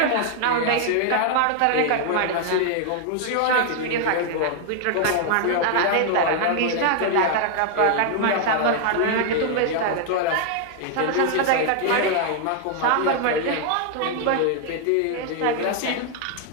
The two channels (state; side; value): different; both; correlation 0.00